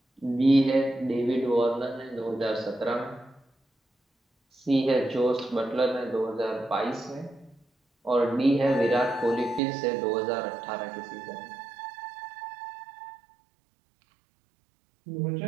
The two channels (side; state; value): left; drops out; at 9.6 s